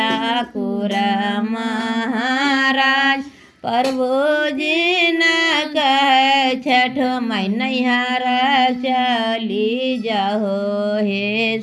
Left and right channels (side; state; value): both; identical; correlation 1.00